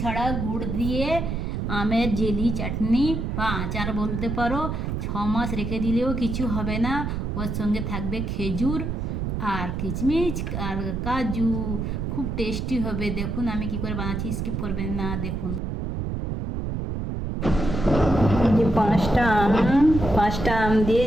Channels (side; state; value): right; noise; rumble, 3 dB below the sound